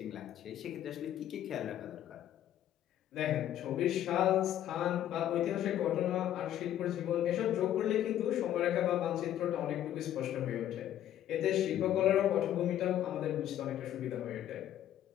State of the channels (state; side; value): quieter; right; 11.6 dB